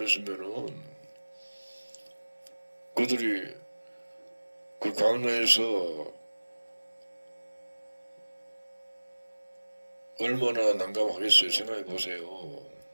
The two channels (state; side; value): inverted; both; correlation -1.00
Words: 그들이 그 강로에서 얼마나 난감하겠어요. 생각해 보세요.